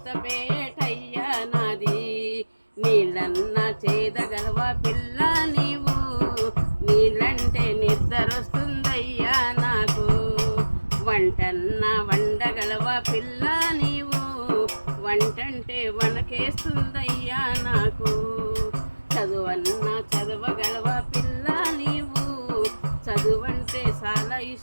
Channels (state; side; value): inverted; both; correlation -1.00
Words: నాది. నీళ్ళన్న చేదగలవ పిల్ల నీవు, నీళ్ళంటే నిద్రొస్తుందయ్యా నాకు. వంటన్న వండగలవ పిల్ల నీవు, వంటంటే వనకేస్తుందయ్యా నాకు. చదువన్న చదవగలవ పిల్ల నీవు, చదువంటే చాలా